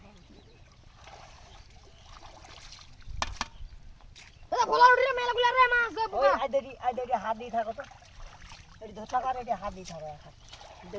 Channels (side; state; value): both; identical; correlation 1.00